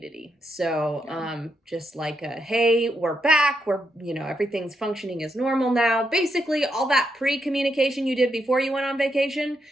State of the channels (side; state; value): both; normal; correlation 0.81